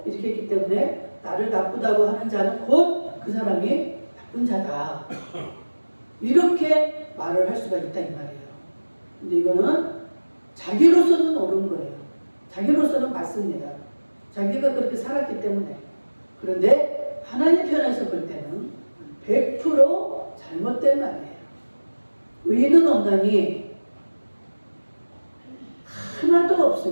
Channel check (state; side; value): inverted; both; correlation -1.00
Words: 이렇게 했기 때문에 나를 나쁘다고 하는 자는 곧 그 사람이 나쁜 자다. 이렇게 말을 할 수가 있다 이 말이에요. 근데 이거는 자기로서는 옳은 거예요. 자기로서는 맞습니다. 자기가 그렇게 살았기 때문에. 그런데 하나님 편에서 볼 때는 100% 잘못된 말이에요. 의인은 없나니 하나도